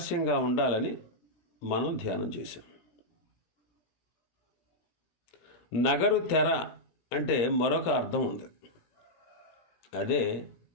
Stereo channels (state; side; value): late; right; 17 ms